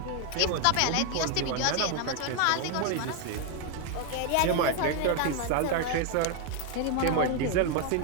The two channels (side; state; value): both; different; correlation 0.00